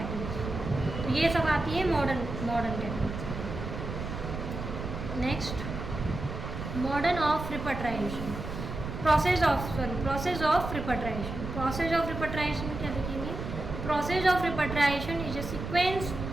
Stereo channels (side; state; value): right; noise; rumble, 6 dB below the sound